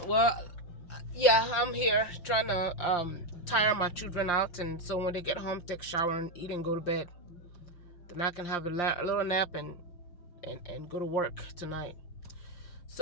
well, yeah, I'm here trying to tire my children out, and so when they get home, take a shower and eat and go to bed. Then I can have a little nap and go to work tonight.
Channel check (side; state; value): right; late; 5.7 ms